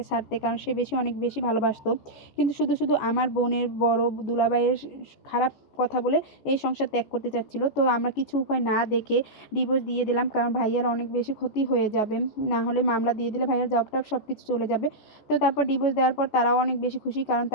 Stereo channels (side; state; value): right; late; 14 ms